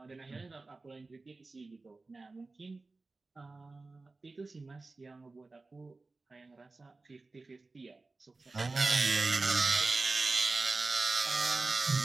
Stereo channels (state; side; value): quieter; left; 3.5 dB